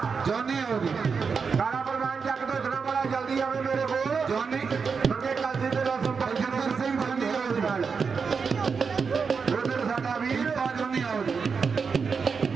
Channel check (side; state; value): left; quieter; 5.5 dB